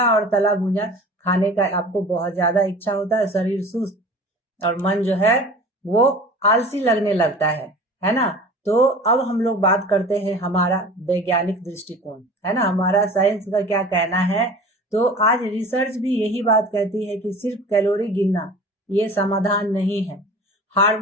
और तला भुना खाने का आपको बहुत ज्यादा इच्छा होता है। शरीर सुस्त और मन जो है वो आलसी लगने लगता है ना। तो अब हम लोग बात करते हैं हमारा वैज्ञानिक दृष्टिकोण, है ना, हमारा साइंस का क्या कहना है। तो आज रिसर्च भी यही बात कहती है कि सिर्फ कैलोरी गिनना ये समाधान नहीं है।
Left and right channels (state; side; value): normal; both; correlation 0.40